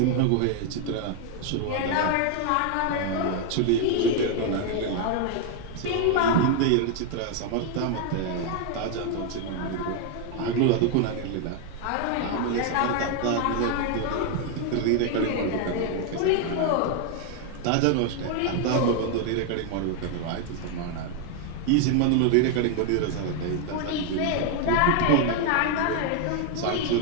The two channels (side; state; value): both; different; correlation 0.00